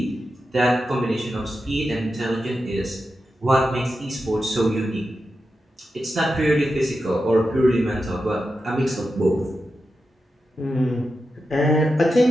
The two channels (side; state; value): both; normal; correlation 0.90